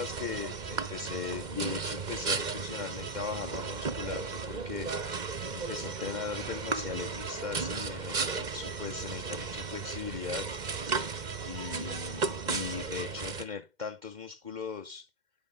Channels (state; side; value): late; left; 2.1 ms